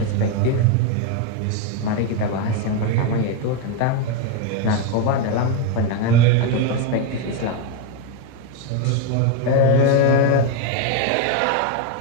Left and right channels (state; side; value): different; both; correlation 0.02